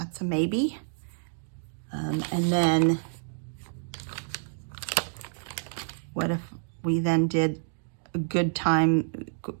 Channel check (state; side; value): silent; left; digital silence